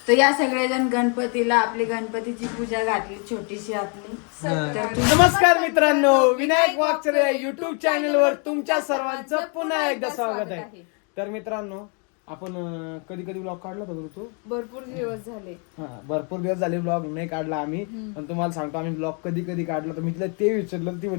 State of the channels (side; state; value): right; quieter; 37.4 dB